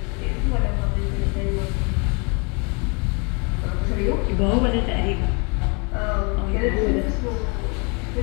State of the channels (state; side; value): quieter; right; 32.6 dB